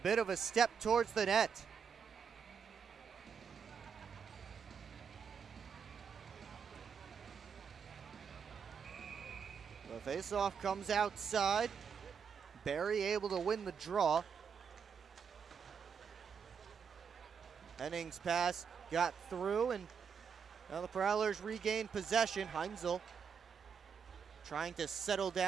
of a step towards the net. The faceoff comes outside. Barry able to win the draw. Henning's pass got through, and now the Prowlers regain possession. Heinzel trying to settle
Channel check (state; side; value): quieter; left; 6.7 dB